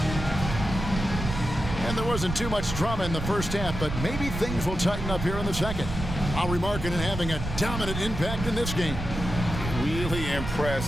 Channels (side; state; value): right; noise; rumble, 6 dB below the sound